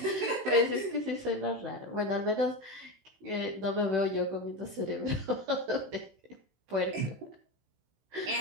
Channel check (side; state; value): left; late; 16 ms